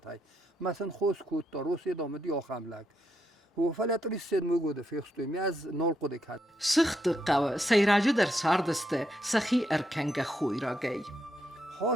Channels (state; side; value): normal; both; correlation 0.80